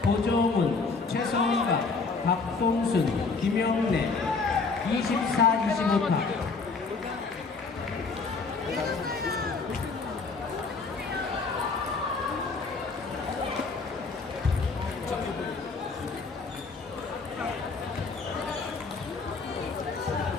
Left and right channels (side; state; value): right; quieter; 4.4 dB